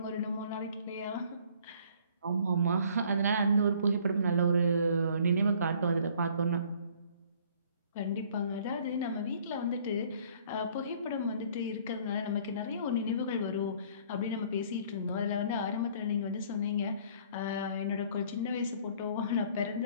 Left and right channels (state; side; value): inverted; both; correlation -0.56